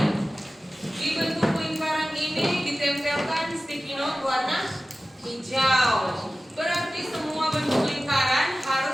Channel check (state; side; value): normal; both; correlation 0.96